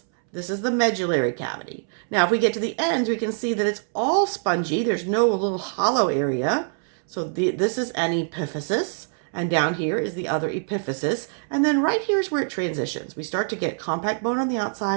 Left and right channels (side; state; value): left; silent; 62 dB below the other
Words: This is the medullary cavity. Now, if we get to the ends, we can see that it's all spongy. There's no little hollow area. So this is an epiphysis, and down here is the other epiphysis. And then right here is where it transitions. We start to get compact bone on the